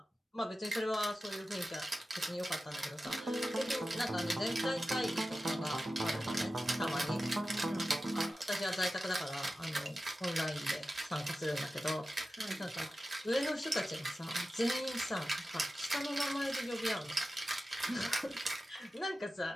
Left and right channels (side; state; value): both; normal; correlation 0.94